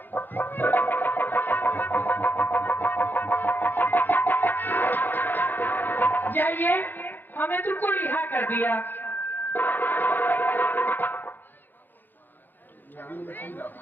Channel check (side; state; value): right; late; 0.091 ms